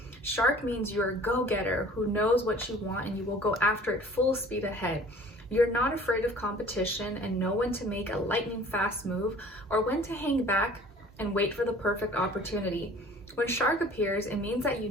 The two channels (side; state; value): both; normal; correlation 0.49